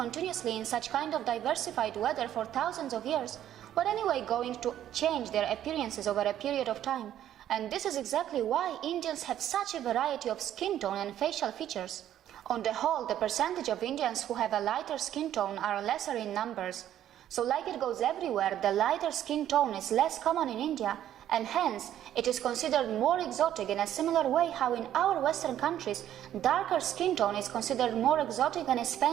in such kind of diversified weather for thousands of years were anyway going to change their appearances over a period of time. And this is exactly why Indians have such a variety of skin tone and facial features. On the whole, the percentage of Indians who have a lighter skin tone are lesser in numbers. So like it goes everywhere, the lighter skin tone is less common in India, and hence it is considered more exotic in a similar way how in our Western countries, darker skin tone is considered more exotic and is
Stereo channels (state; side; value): quieter; left; 11.4 dB